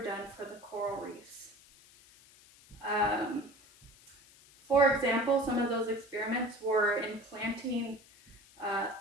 done for the coral reefs. For example, some of those experiments were in planting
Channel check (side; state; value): left; noise; hiss, 25 dB below the sound